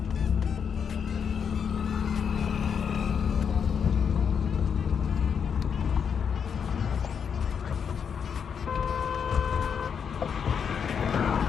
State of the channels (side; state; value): right; quieter; 7.1 dB